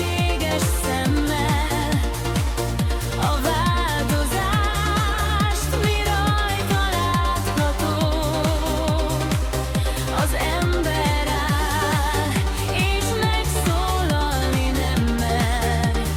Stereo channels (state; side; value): identical; both; correlation 1.00